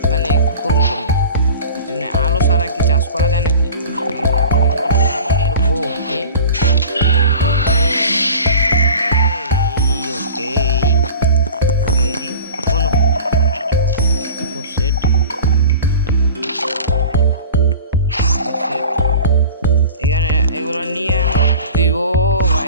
মানে করব করি, আলো ছাড়া কি চাষ করা যায় নাকি? ডায়মন্ডের হো, ওকে এখানে এগুলো নিয়ে দিব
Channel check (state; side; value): inverted; both; correlation -0.39